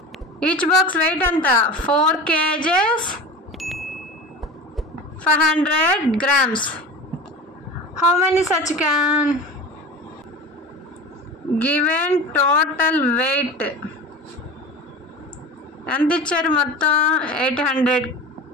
వెయిట్ ఎంత? 4 kgs 500 grams. How many such can? Given total weight ఎంత ఇచ్చారు? మొత్తం 800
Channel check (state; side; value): normal; both; correlation 0.33